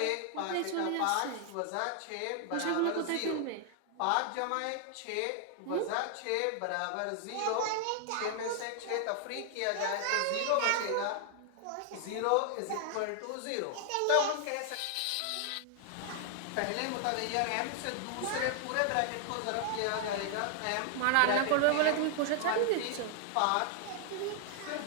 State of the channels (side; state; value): both; different; correlation 0.00